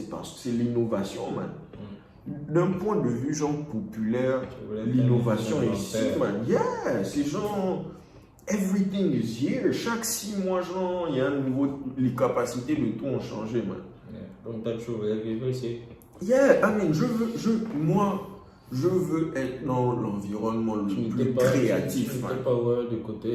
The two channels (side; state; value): both; identical; correlation 1.00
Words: parce que c'est l'innovation, man. D'un point de vue genre populaire, l'innovation est ici, man. Yeah, c'est genre, everything is here. Chaque 6 mois, genre, il y a un nouveau, les capacités de tout ont changé, man. Yeah. Donc t'as toujours voulu ici. Yeah, I mean, je veux être dans l'environnement le plus créatif. Tu n'étais pas du